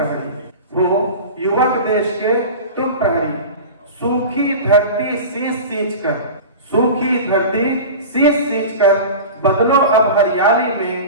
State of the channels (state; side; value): inverted; both; correlation -0.32